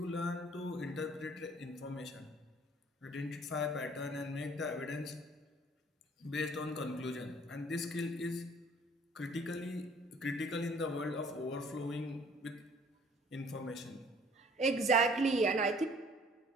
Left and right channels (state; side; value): normal; both; correlation 0.56